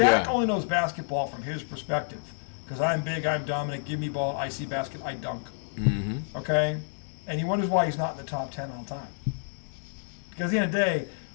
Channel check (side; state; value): right; silent; digital silence